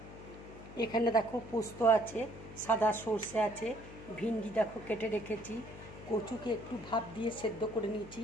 এখানে দেখো পোস্ত আছে, সাদা সর্ষে আছে, ভিন্ডি দেখো কেটে রেখেছি, কচুকে একটু ভাপ দিয়ে সেদ্ধ করে নিয়েছি,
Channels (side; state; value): left; noise; hum, 14 dB below the sound